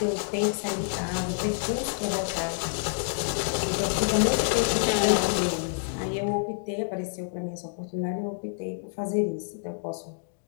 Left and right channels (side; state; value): right; silent; digital silence